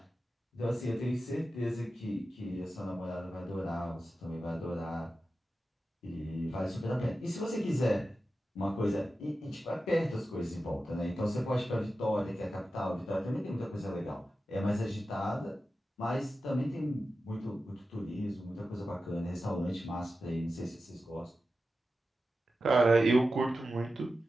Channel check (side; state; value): both; normal; correlation 0.92